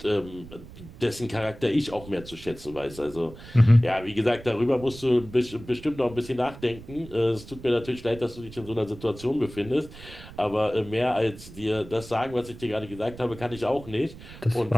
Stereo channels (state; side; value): noise; right; rumble, 16 dB below the sound